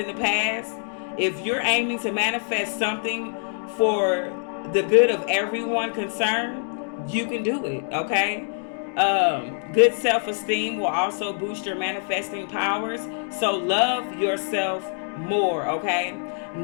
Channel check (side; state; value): right; silent; 60 dB below the other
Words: the past, if you're aiming to manifest something for the good of everyone concerned, you can do it, okay? Good self-esteem will also boost your manifesting powers. So love yourself more, okay?